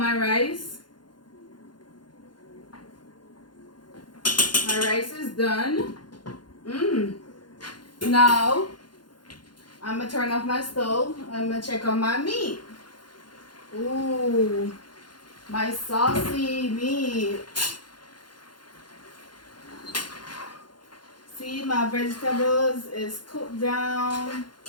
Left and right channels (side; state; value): right; late; 0.71 ms